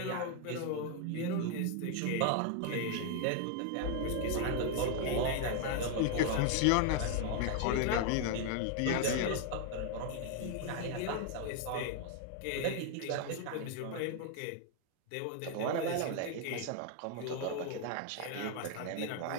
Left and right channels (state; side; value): different; both; correlation 0.00